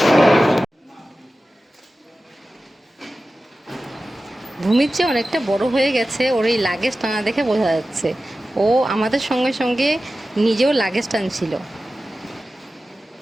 ভূমির চেয়ে অনেকটা বড় হয়ে গেছে, ওর এই লাগেজ টানা দেখে বোঝা যাচ্ছে। ও আমাদের সঙ্গে সঙ্গে নিজেও লাগেজ টানছিল।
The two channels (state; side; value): normal; both; correlation 0.95